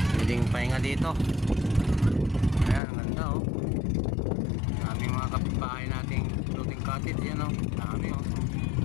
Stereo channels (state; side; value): drops out; right; at 2.8 s